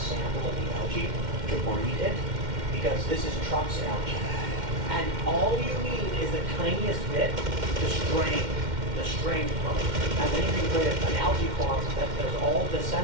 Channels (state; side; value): late; left; 2.1 ms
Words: of the algae to breed it, because this is Trump's algae. And all you need is the tiniest bit to strain the strained mode. And then you can create an algae farm that does all